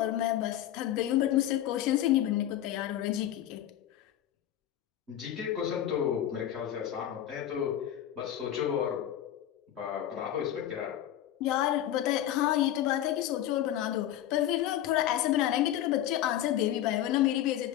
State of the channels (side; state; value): right; quieter; 11.9 dB